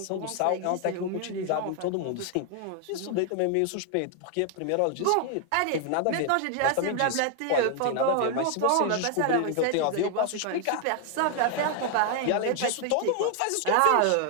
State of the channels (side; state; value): both; different; correlation 0.00